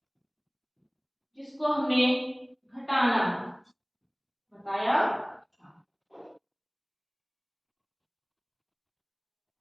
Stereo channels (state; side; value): identical; both; correlation 1.00